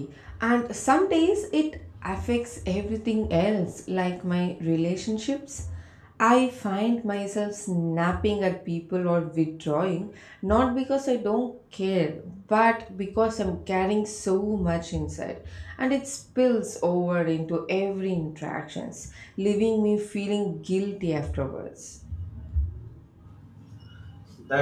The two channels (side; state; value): both; identical; correlation 1.00